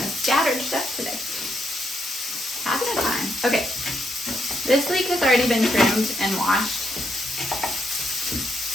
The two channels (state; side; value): normal; both; correlation 0.77